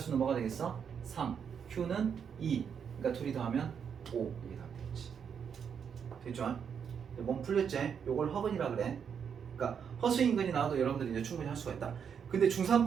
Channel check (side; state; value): left; quieter; 7.3 dB